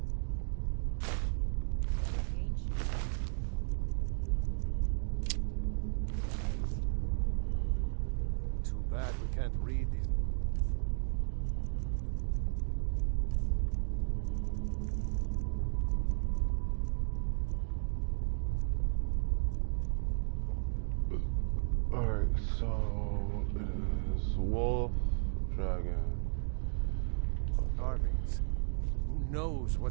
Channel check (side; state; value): left; silent; digital silence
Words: Too bad we can't read these. Alright, so it is wolf, dragon. Carvings. Who knows